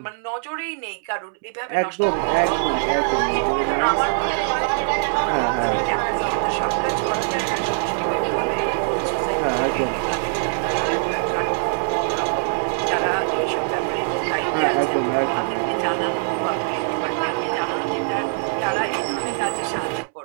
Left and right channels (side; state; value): left; silent; 64 dB below the other